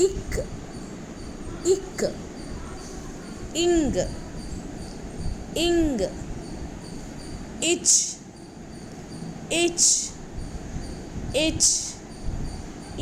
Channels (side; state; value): both; identical; correlation 1.00